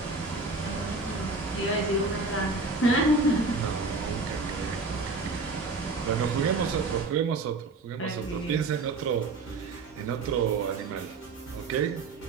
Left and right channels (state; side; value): quieter; left; 3.6 dB